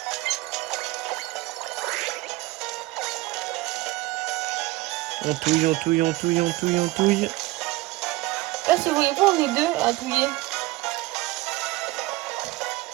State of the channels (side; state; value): left; quieter; 20.3 dB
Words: On touille, on touille, on touille, on touille, on touille. Là, si vous voyez pas, on est deux à touiller.